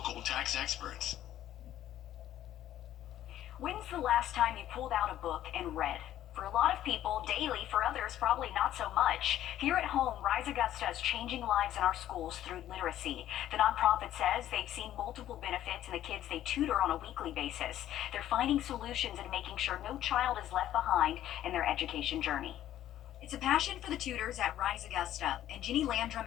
tax experts. When's the last time you pulled out a book and read? For a lot of people, daily. For others, probably not so much. Here at home, Rise Augusta is changing lives in our schools through literacy. The nonprofit says they've seen multiple benefits in the kids they tutor on a weekly basis. They're finding solutions and making sure no child is left behind in their education journey. It's a passion for the tutors at Rise Augusta, and Jenny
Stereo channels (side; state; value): right; quieter; 12.4 dB